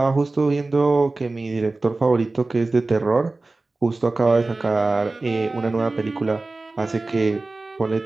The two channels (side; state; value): left; quieter; 3.3 dB